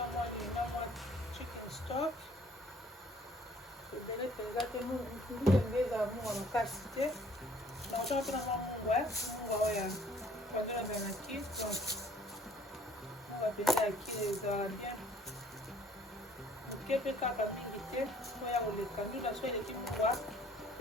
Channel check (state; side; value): normal; both; correlation 0.57